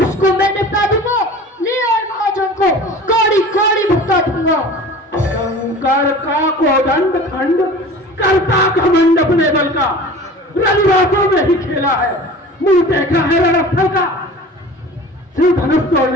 उसको मैं निपटा दूंगा। ले आए महाजन को कौड़ी कौड़ी भुगता दूंगा। शंकर का कोदंड खंड करता घमंड अपने बल का रविवासों में ही खेला है मुंह देखा है रणस्थल का। सिर्फ धनुष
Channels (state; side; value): normal; both; correlation 0.40